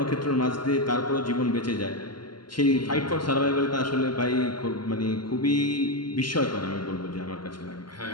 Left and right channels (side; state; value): right; late; 0.71 ms